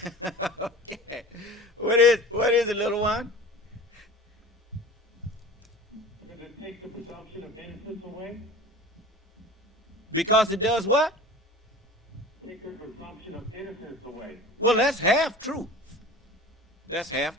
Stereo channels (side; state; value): both; normal; correlation 0.38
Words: Okay. What is it, little one? Because it takes the presumption of innocence away. Because it does what? Take the presumption of innocence away. Well, that's half true. That's half